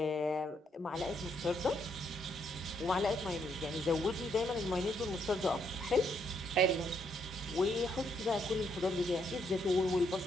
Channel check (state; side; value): normal; both; correlation 0.74